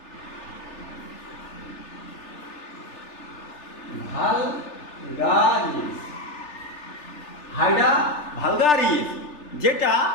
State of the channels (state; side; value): late; right; 3.4 ms